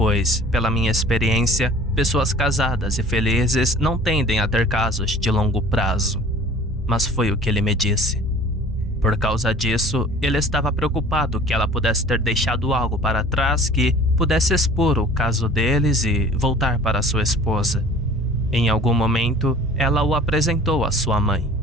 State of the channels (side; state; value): both; normal; correlation 0.48